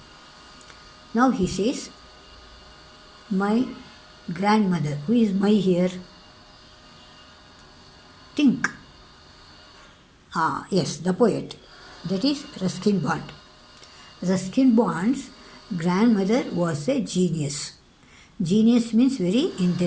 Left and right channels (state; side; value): identical; both; correlation 1.00